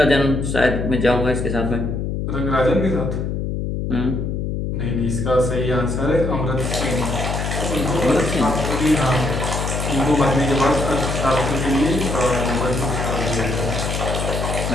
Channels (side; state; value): left; noise; hum, 2 dB below the sound